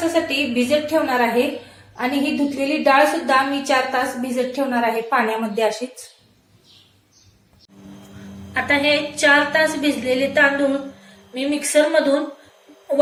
भिजत ठेवणार आहे, आणि ही धुतलेली डाळ सुद्धा मी 4 तास भिजत ठेवणार आहे पाण्यामध्ये अशीच। आता हे 4 तास भिजलेले तांदूळ मी मिक्सर मधून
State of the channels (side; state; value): both; identical; correlation 1.00